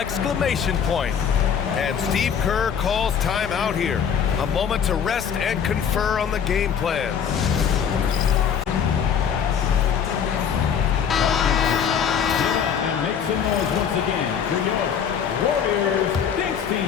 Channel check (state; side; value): quieter; right; 7.6 dB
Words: point. And Steve Kerr calls timeout here. A moment to rest and confer on the game plan. And make some noise once again for your Warriors Kings